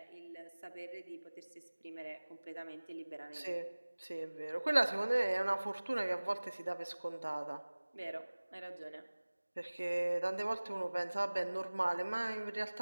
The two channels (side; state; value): both; inverted; correlation -1.00